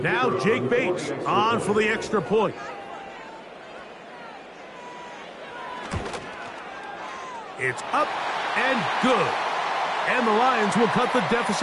Now Jake Bates on for the extra point. It's up and good. And the Lions will cut the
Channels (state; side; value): identical; both; correlation 1.00